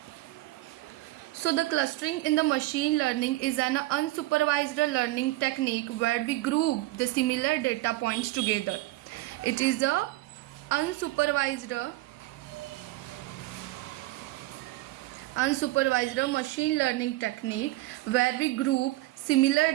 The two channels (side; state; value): left; quieter; 18.3 dB